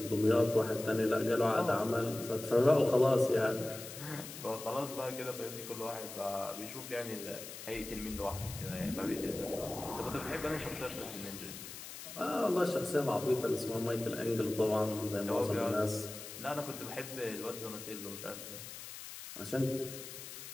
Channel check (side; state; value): left; noise; hiss, 11 dB below the sound